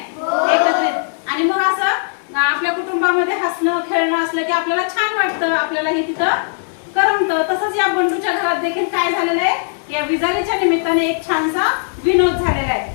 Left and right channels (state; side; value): silent; right; digital silence